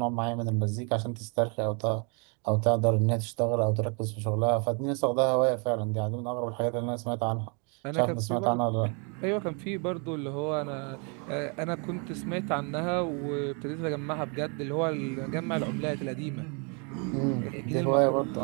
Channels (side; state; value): left; quieter; 35.7 dB